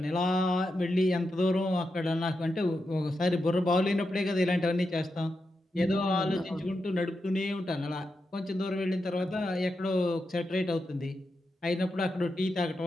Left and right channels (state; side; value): normal; both; correlation 0.87